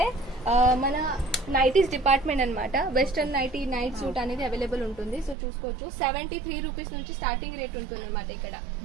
మన నైటీస్ డిపార్ట్మెంట్ అనమాట. వెస్టర్న్ నైటీ, నైట్ సూట్ అనేది అవైలబుల్ ఉంటుంది. సో చూసుకోవచ్చు 73 రూపీస్ నుంచి స్టార్టింగ్ రేట్ ఉంటుంది అనమాట ఇక్కడ.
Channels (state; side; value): drops out; left; at 5.4 s